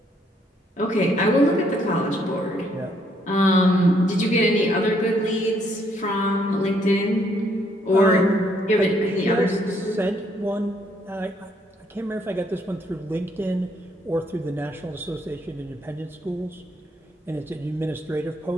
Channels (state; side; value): normal; both; correlation 0.70